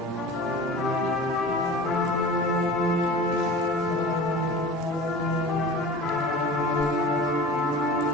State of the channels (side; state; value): both; normal; correlation 0.37